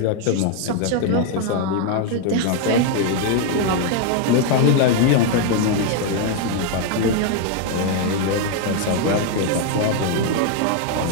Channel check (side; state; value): both; different; correlation 0.01